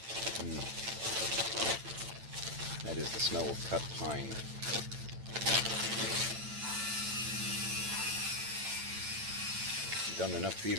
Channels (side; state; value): left; late; 8.9 ms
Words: That is the smell of cut pine. Done enough